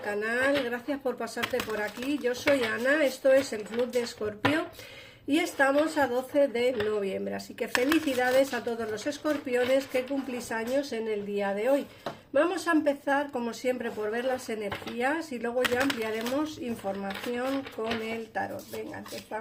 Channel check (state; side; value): identical; both; correlation 1.00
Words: gracias por pasarte por aquí. Yo soy Ana, esto es el Club de Escorpio y estamos a 12 de noviembre, así que felicidades a todos los escorpiones que cumplís años en el día de hoy. Vamos a empezar como siempre por ver las energías y luego ya ampliaremos información con el tarot. Venga,